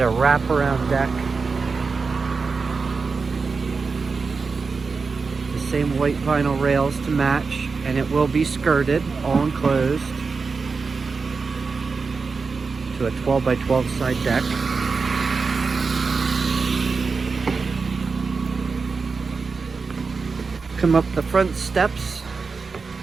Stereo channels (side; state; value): left; quieter; 4.7 dB